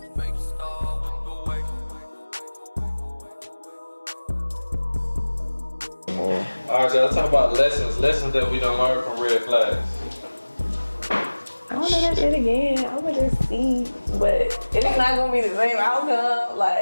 All right, so let's talk about lessons that we don't learn from red flags. I don't do that shit again. I would just see, but it's not gonna be the same outcome.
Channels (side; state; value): both; inverted; correlation -1.00